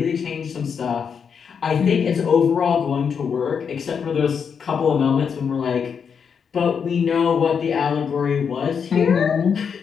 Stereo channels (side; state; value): right; quieter; 6.7 dB